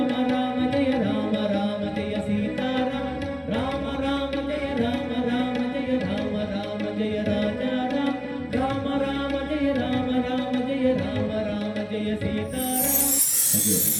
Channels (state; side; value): identical; both; correlation 1.00